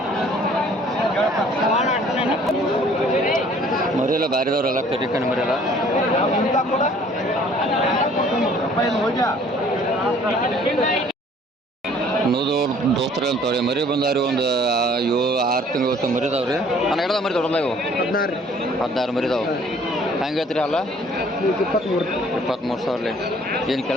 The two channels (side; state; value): both; normal; correlation 0.56